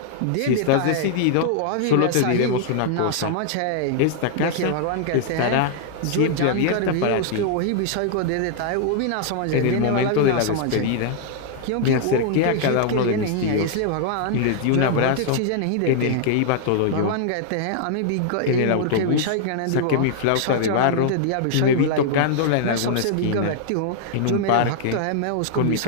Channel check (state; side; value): different; both; correlation -0.01